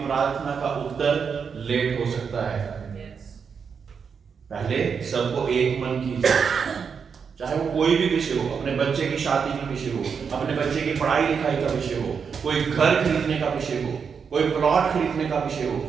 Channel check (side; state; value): left; quieter; 6.3 dB